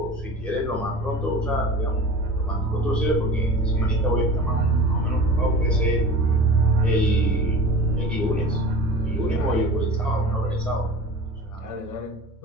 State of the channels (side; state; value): both; normal; correlation 0.37